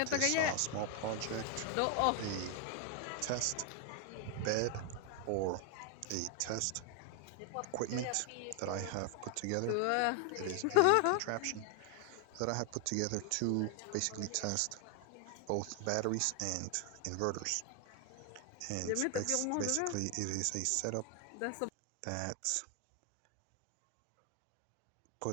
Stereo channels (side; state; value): both; different; correlation 0.01